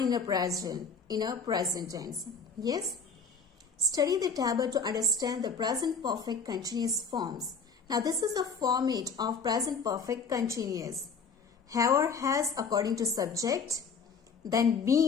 in a present tense. Yes? Study the table to understand the present perfect continuous forms. Now this is the format of present perfect continuous. Have or has according to subject. Then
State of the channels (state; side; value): quieter; right; 4.9 dB